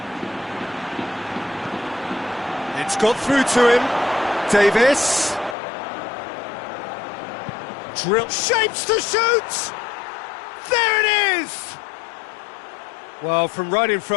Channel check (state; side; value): drops out; right; at 5.6 s